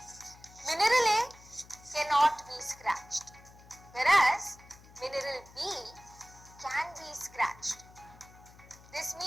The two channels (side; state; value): left; noise; hum, 22 dB below the sound